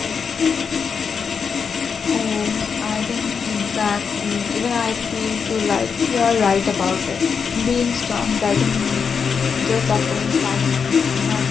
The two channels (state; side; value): quieter; right; 6.1 dB